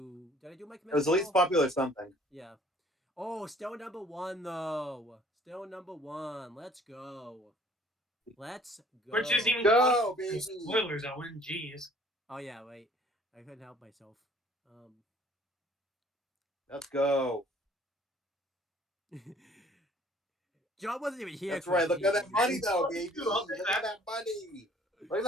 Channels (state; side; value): normal; both; correlation 0.56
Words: Did I do my commissioner? It was the least popular something. Yeah. Oh, still number 1 though. Still number 1. Let's go. Let's go. Which isn't even Go, baby. spoilers, Owen. Jeez. Oh yeah, wait. I couldn't help myself. Let's go. John wasn't even here. That's right. Look at that money, though, baby. I'll take Look at that money. Look at